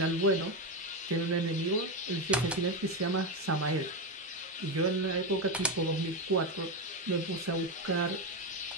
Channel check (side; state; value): both; normal; correlation 0.11